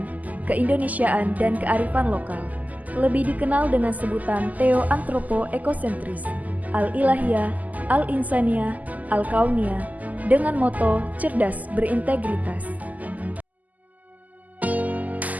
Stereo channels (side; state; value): left; late; 0.078 ms